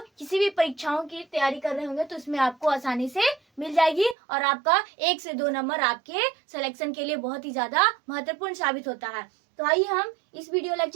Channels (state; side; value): drops out; left; at 4.2 s